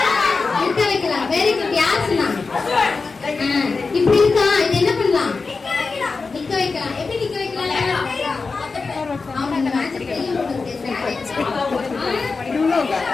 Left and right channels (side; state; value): right; quieter; 4.3 dB